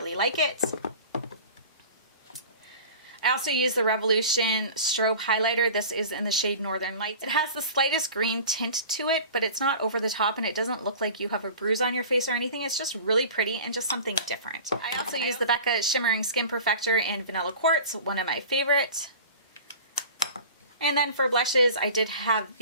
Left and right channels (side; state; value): both; inverted; correlation -0.39